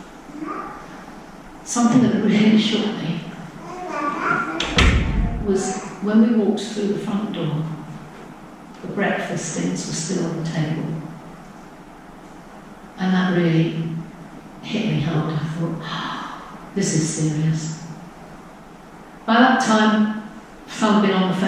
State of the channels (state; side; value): identical; both; correlation 1.00